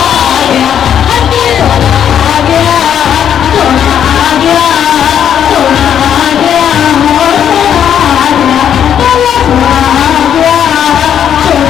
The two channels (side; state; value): right; quieter; 9.2 dB